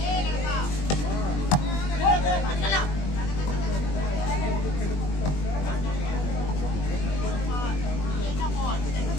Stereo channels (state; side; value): late; right; 21 ms